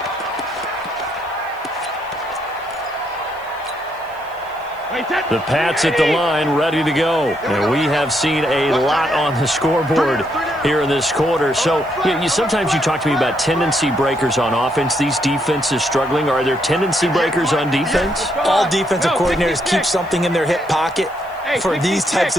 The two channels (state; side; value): noise; right; hiss, 28 dB below the sound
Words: The Pats at the line, ready to go. And we have seen a lot on the scoreboard here in this quarter. So sometimes you talk to me about tendency breakers on offense. These defenses struggling. Are there tendency breakers on defense? All defensive coordinators keep something in their hip pocket for these types